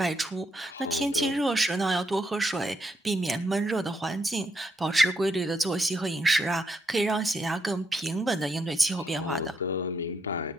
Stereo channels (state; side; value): normal; both; correlation 0.77